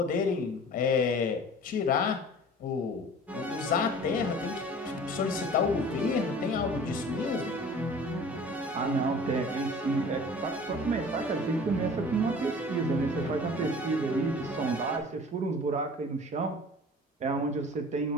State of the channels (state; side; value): normal; both; correlation 0.44